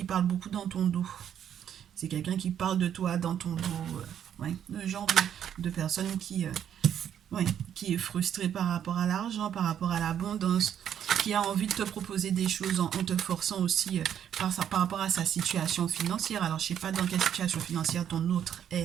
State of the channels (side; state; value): left; quieter; 9.5 dB